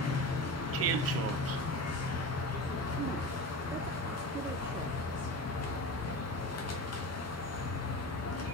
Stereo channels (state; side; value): normal; both; correlation 0.29